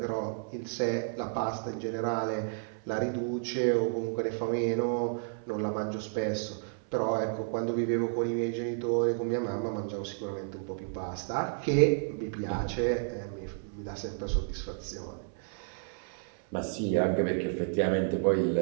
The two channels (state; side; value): silent; left; 57 dB below the other